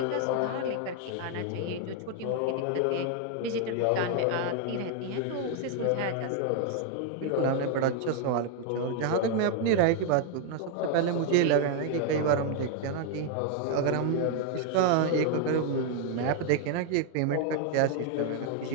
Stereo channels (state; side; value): different; both; correlation 0.00